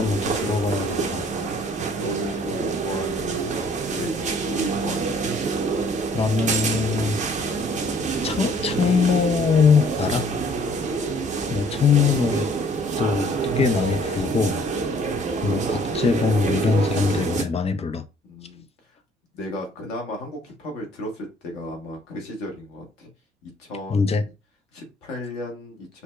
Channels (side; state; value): both; normal; correlation 0.59